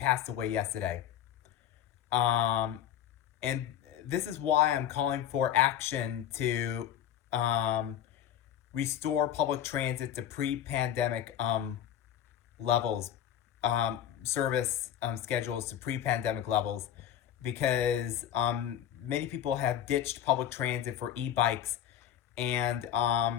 away yesterday. And this is why I'm calling for action to restore public transit to pre-pandemic levels, service schedules to pre-pandemic levels, because many people have ditched public transit for e-bikes, and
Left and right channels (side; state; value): right; quieter; 10.6 dB